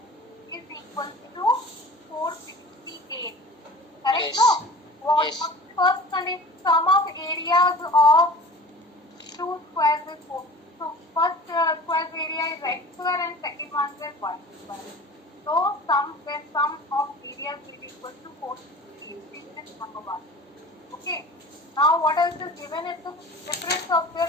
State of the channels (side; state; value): both; normal; correlation 0.40